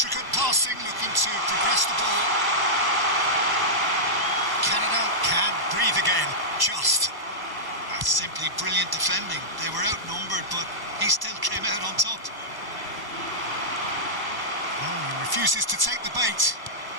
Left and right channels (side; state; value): left; late; 1.0 ms